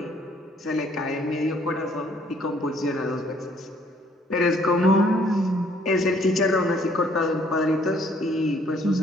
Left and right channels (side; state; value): both; normal; correlation 0.63